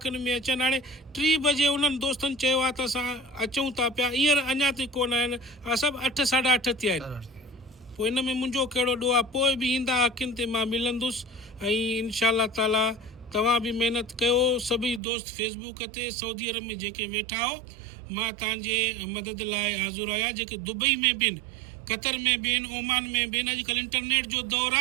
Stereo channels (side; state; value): left; drops out; at 15.0 s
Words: में अचनि। हाणे 3 बजे उन्हनि दोस्तनि चयो आहे त असां अचूं था पिया, हींअर अञा ताईं कोन आहिनि, सभु 8-8:30 थिया आहिनि। पोइ हिन में मुंहिंजो कहिड़ो ॾोह आहे, पोइ बि ईंदा अखियुनि ते मां मिलंदुसि। ऐं इंशाअल्लाह ताला तव्हां बि महिनत कयो, सभई दोस्त फेसबुक ते सऊदी अरब में जेके वेठा हो, मां तव्हांजे मदद लाइ हाज़ुरु आहियां। जेके दुबई में बि आहिनि, कतर में बि आहिनि, ओमान में बि आहिनि, अॼुकल्ह इंटरनेट जो दौरु